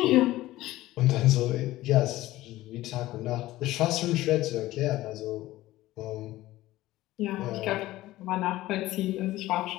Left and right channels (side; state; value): right; quieter; 16.5 dB